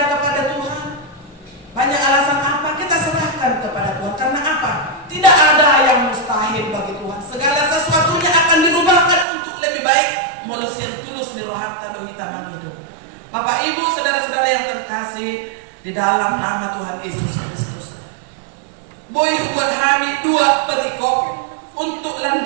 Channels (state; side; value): drops out; left; at 9.2 s